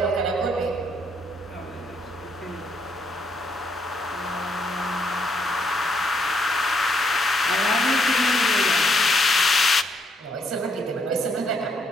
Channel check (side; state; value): both; normal; correlation 0.72